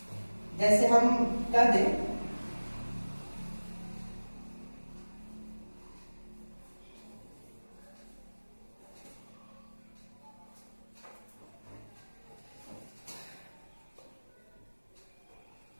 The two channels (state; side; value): inverted; both; correlation -1.00